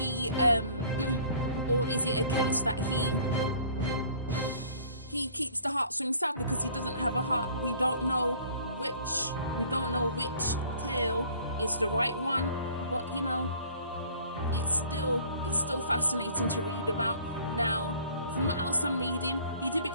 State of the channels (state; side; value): inverted; both; correlation -0.52